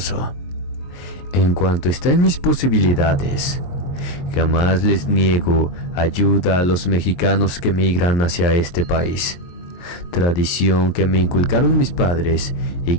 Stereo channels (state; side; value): late; right; 23 ms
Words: En cuanto está en mis posibilidades, jamás les niego ayuda a los mexicanos que migran hacia este país. Tradición que me inculcaron mis padres y